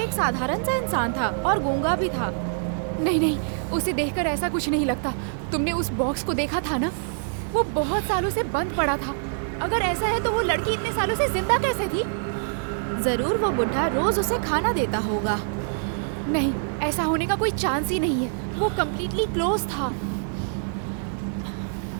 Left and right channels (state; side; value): silent; left; digital silence